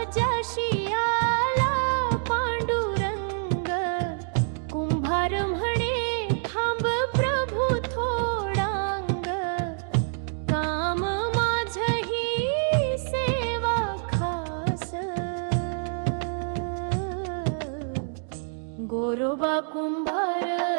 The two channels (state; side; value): silent; left; digital silence